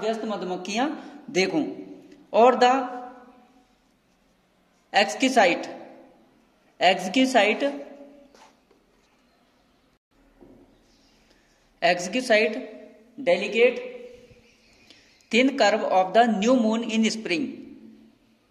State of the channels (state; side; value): identical; both; correlation 1.00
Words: व्यस्त मधुमक्खियां देखूं, और the exquisite delicate thin curve of the new moon in spring,